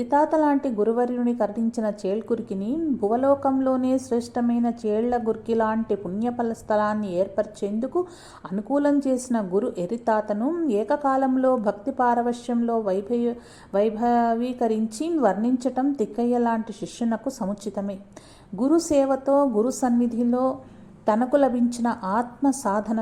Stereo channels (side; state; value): both; identical; correlation 1.00